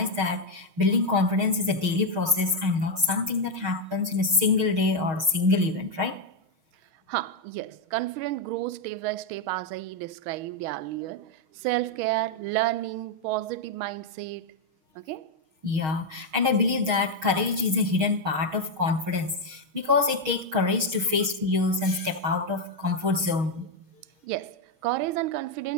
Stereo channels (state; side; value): late; left; 6.4 ms